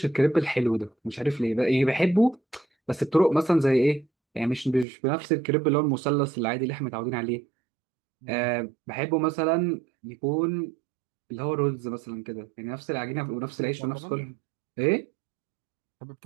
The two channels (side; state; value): left; drops out; at 4.9 s